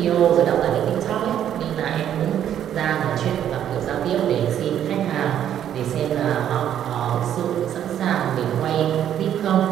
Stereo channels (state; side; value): quieter; left; 10.2 dB